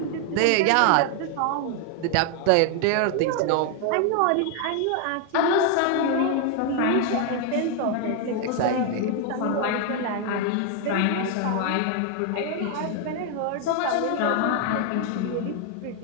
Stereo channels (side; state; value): both; different; correlation 0.00